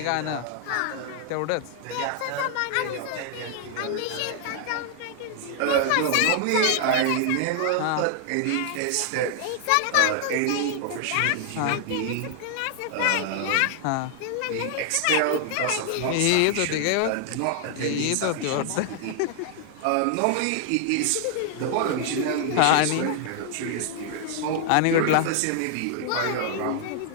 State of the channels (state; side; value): different; both; correlation 0.00